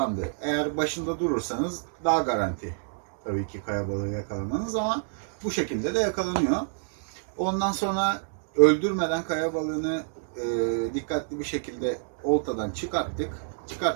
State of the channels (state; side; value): silent; left; digital silence